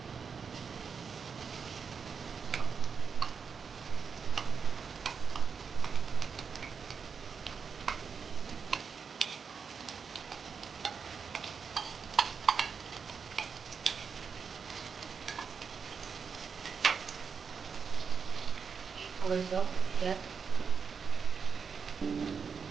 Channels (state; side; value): quieter; left; 5.9 dB